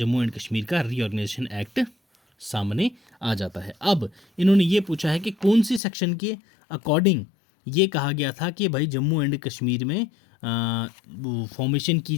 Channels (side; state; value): right; drops out; at 5.8 s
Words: एंड कश्मीर का रीऑर्गेनाइजेशन एक्ट सामने आ जाता है। अब इन्होंने ये पूछा है कि कौन सी सेक्शन के अकॉर्डिंग ये कहा गया था कि भाई जम्मू एंड कश्मीर में फॉर्मेशन की